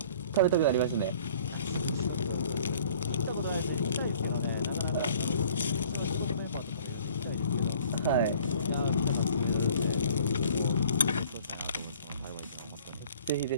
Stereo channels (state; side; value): inverted; both; correlation -0.53